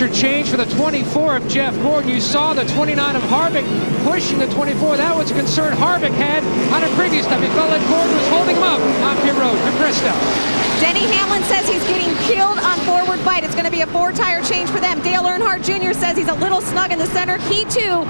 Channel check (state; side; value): inverted; both; correlation -1.00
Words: change for the 24 of Jeff Gordon. You saw the 29 of Harvick pushing the 24. That was a concern Harvick had on a previous time. He felt like Gordon was holding him up on pit road for Krista. Denny Hamlin says he's getting killed on forward bite. It's going to be a 4-tire change for them. Dale Earnhardt Jr. says he's a little snug in the center. He, too,